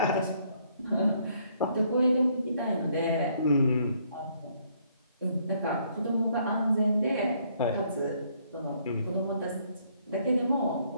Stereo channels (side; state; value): both; inverted; correlation -0.67